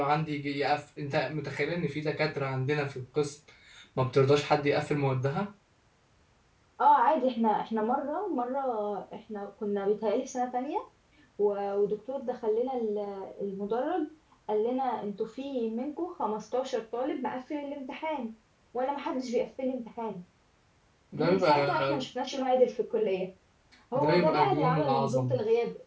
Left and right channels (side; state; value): both; identical; correlation 1.00